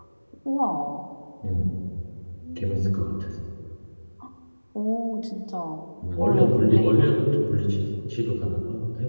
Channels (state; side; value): inverted; both; correlation -1.00